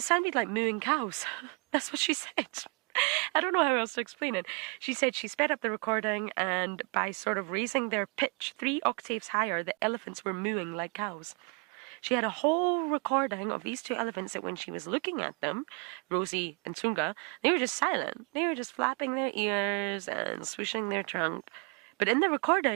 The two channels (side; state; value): left; quieter; 33.8 dB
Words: sounded like mooing cows. That's what she said. I don't know how else to explain it. She said she sped up the recording, and by sort of raising their pitch 3 octaves higher, the elephants were mooing like cows. She had a whole recording of these 2 elephants that when she was looking at them, Rosie and Tunga, they were just silent. They were just flapping their ears and swishing their trunk. But in the